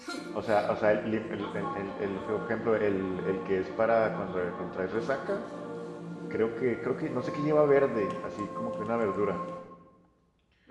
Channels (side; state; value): both; identical; correlation 1.00